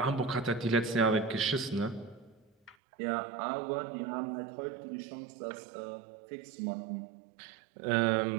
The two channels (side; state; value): left; drops out; at 2.8 s